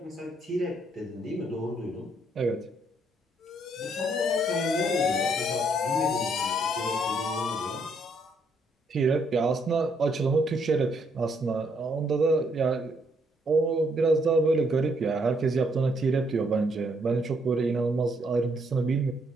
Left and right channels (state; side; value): normal; both; correlation 0.72